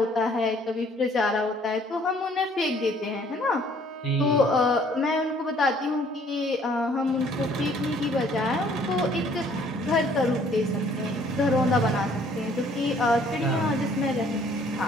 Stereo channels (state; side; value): normal; both; correlation 0.60